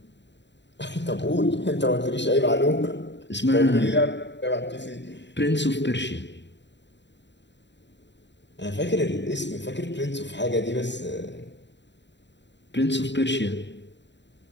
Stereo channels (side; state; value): right; late; 0.52 ms